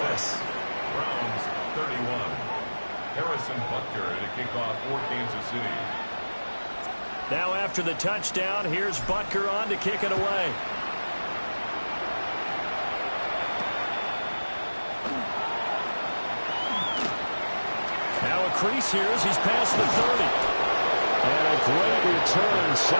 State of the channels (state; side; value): inverted; both; correlation -1.00